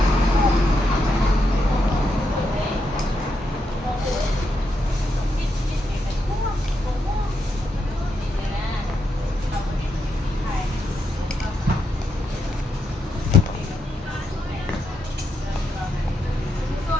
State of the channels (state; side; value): normal; both; correlation 0.82